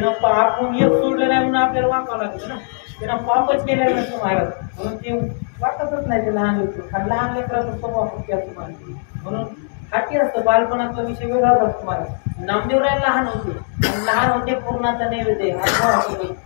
आपण एक सोडलं नाही म्हणून आपल्याला वाकावं लागतं ना, त्यानं पापच केलेलं नसतं महाराज. म्हणून ते वाटतच नाही ते लहान लेकरं. लहान लेकराचा स्वभाव हत्ती असतो महाराज, म्हणून हत्ती असतं. बालपणाचा विषय वेगळाच असतो महाराज. नामदेवराय लहान होते पूर्णाचा नैवेद्य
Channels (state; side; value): silent; right; digital silence